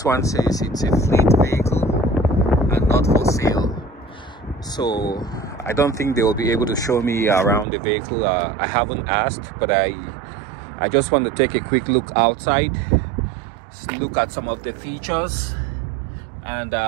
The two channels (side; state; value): left; drops out; at 7.7 s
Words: one says it's a fleet vehicle and not for sale, so I don't think they will be able to show me around the vehicle. I haven't asked, but I just want to take a quick look outside, look at some of the features, and